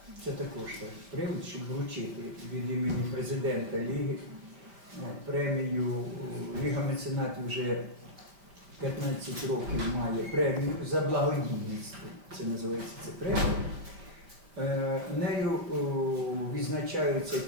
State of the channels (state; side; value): late; left; 4.9 ms